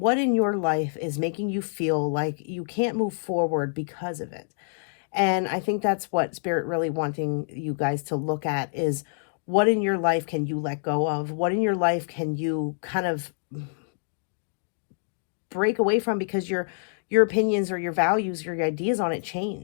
in your life is making you feel like you can't move forward because of it? And I think that's what Spirit really wanting you guys to look at is, what in your life can you let go of? What in your life can you kind of break away from because your opinions or your values or your ideas on it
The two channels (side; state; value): right; silent; digital silence